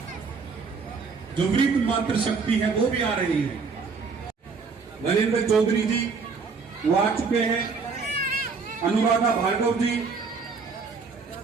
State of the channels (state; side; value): quieter; left; 4.9 dB